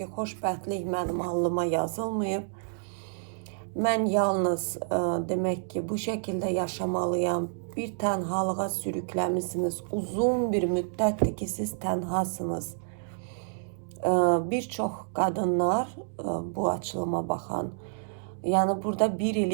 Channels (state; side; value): silent; left; digital silence